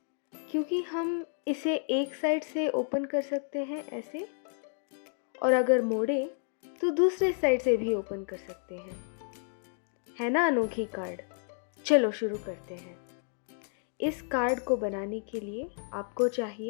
क्योंकि हम इसे एक साइड से ओपन कर सकते हैं ऐसे, और अगर मोड़े तो दूसरे साइड से भी ओपन कर सकते हैं। है ना अनोखी कार्ड? चलो शुरू करते हैं। इस कार्ड को बनाने के लिए आपको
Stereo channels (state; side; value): silent; right; 57 dB below the other